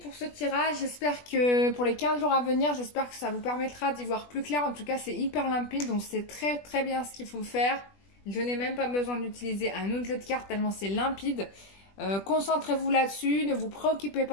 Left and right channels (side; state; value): right; late; 20 ms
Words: ce tirage, j'espère que pour les 15 jours à venir, j'espère que ça vous permettra d'y voir plus clair. En tout cas c'est hyper limpide, donc c'est très très bien ce qu'il faut faire. Je n'ai même pas besoin d'utiliser un autre jeu de cartes tellement c'est limpide. Concentrez-vous là-dessus, ne vous préoccupez